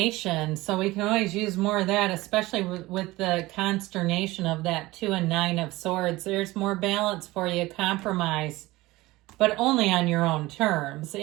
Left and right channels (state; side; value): quieter; left; 19.4 dB